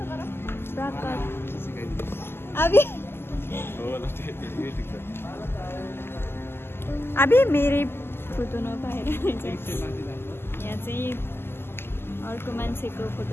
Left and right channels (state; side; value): late; right; 0.12 ms